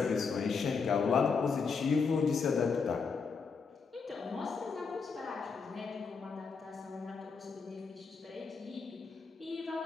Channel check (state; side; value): quieter; right; 5.2 dB